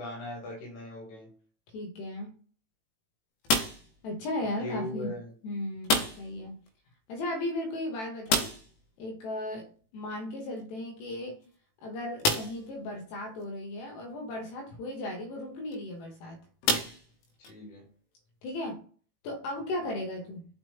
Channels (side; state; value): right; late; 18 ms